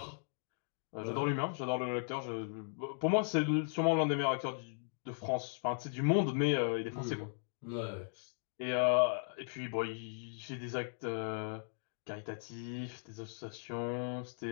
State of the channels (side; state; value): right; silent; digital silence